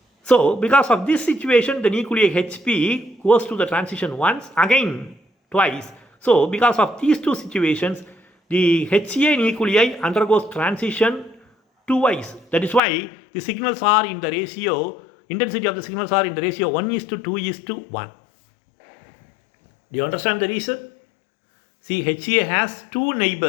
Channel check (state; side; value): drops out; right; at 12.8 s